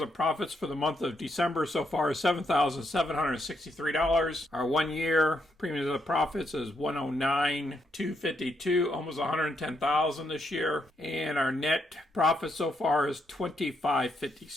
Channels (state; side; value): normal; both; correlation 0.77